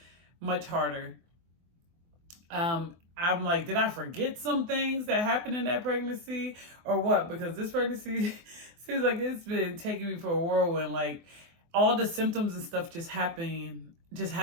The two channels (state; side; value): late; left; 24 ms